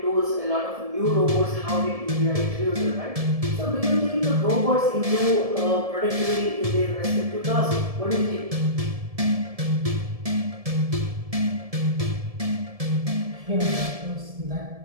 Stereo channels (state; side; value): late; left; 1.7 ms